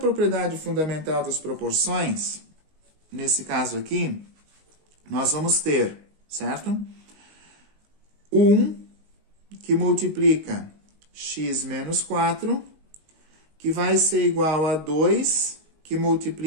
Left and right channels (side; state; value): left; late; 19 ms